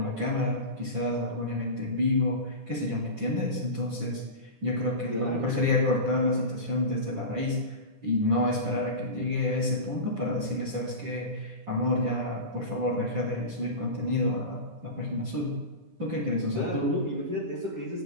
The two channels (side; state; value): left; late; 9.9 ms